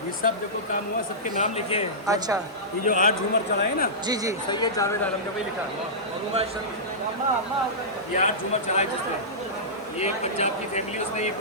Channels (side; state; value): both; normal; correlation -0.17